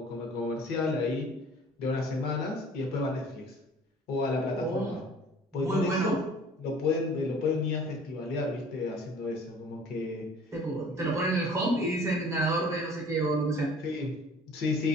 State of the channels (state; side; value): normal; both; correlation 0.50